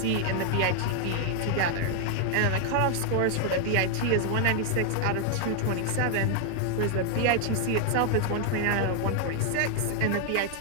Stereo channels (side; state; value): both; different; correlation 0.00